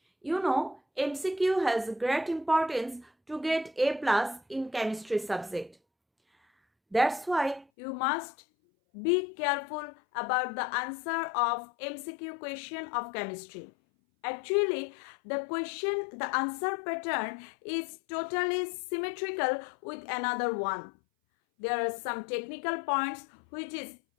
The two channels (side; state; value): right; drops out; at 7.7 s